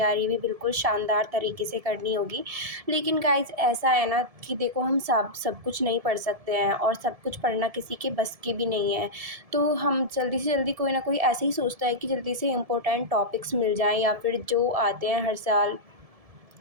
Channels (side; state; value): left; late; 1.7 ms